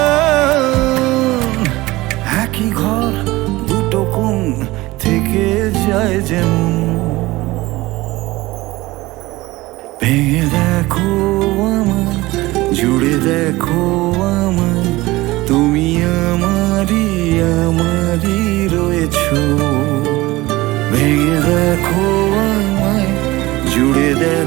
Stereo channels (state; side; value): quieter; left; 19.5 dB